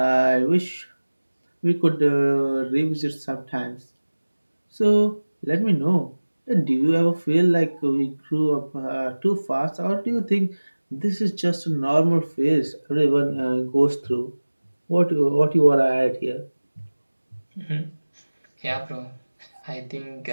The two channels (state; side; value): inverted; both; correlation -1.00